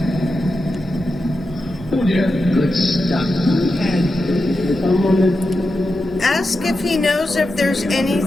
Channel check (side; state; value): both; normal; correlation 0.89